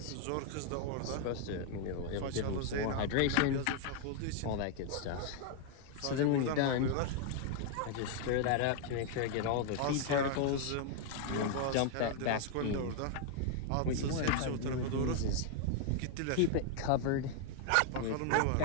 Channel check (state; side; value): different; both; correlation 0.00